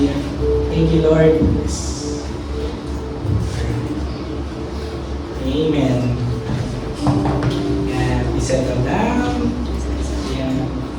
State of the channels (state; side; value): identical; both; correlation 1.00